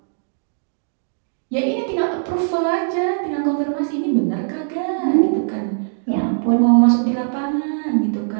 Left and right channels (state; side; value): silent; left; digital silence